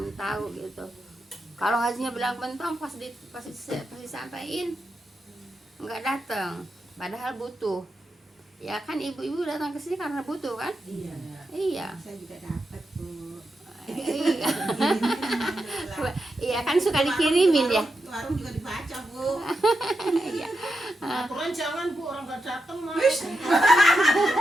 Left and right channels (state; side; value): normal; both; correlation 0.87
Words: tahu gitu. Kalau ngajinya bilang bentong pasti sampaiin nggak datang, padahal butuh. Ya kan ibu-ibu datang ke sini karena butuh kan? Iya. Saya juga dapat Bu. Iya. Iya kan suka dikirimin ya. Warung juga dibaca Bu. Iya. Aturan jangan Bu, orang nggak datang mah.